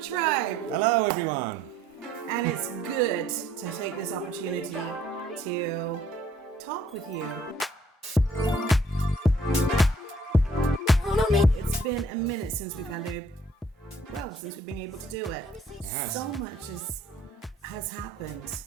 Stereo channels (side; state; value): both; normal; correlation 0.61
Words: Hello, tribe. Hello, everyone. And it's good to take this opportunity to talk with you. It's been a minute since we've been able to do it. Yes. So much has happened.